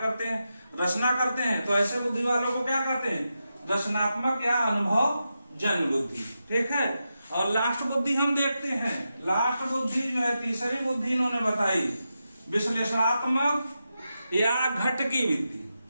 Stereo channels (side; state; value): both; inverted; correlation -0.89